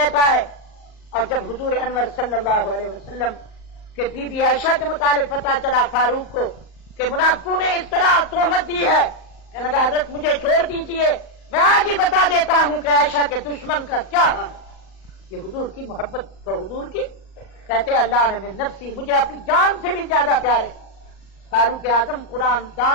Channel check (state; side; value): late; right; 38 ms